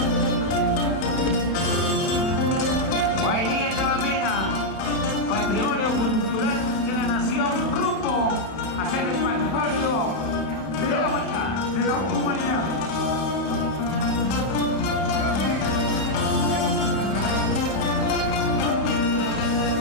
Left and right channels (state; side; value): late; right; 32 ms